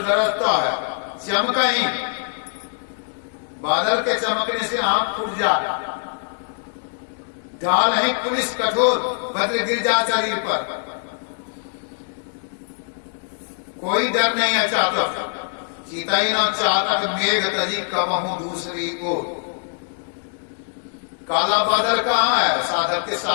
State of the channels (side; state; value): right; silent; digital silence